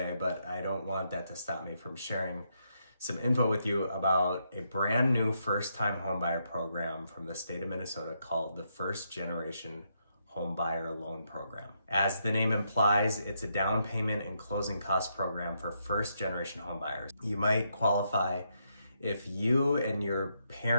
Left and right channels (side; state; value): both; inverted; correlation -0.79